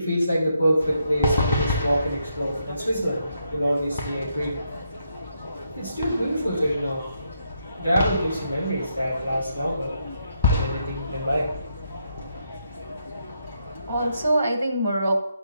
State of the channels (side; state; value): both; inverted; correlation -0.78